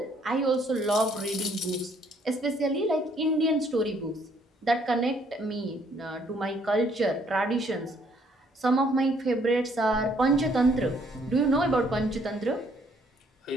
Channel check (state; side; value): normal; both; correlation 0.65